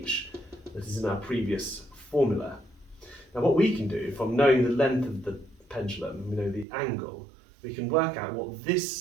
that is in our previous formula. Now what we can do, from knowing the length of the pendulum, we know the angle, we can work out what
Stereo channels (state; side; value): drops out; left; at 6.7 s